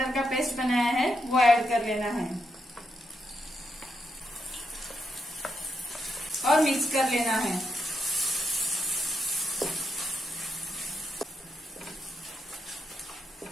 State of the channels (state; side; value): normal; both; correlation 0.82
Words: का पेस्ट बनाया है वो ऐड कर लेना है और मिक्स कर लेना है।